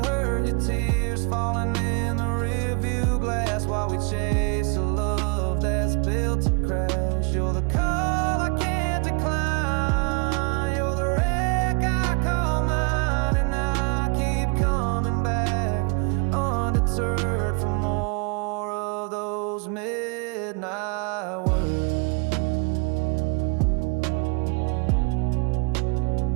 heard your tears falling in the rearview glass. we chase a love that's built to crash. You're the call I can't decline. You're the wreck I call mine, and I keep coming back, undeterred from more of those midnight words.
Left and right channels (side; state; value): left; quieter; 35.6 dB